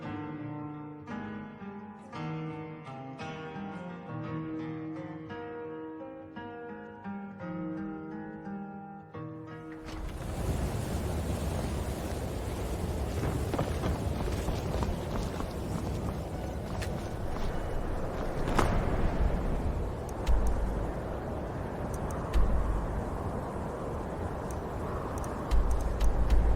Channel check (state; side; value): identical; both; correlation 1.00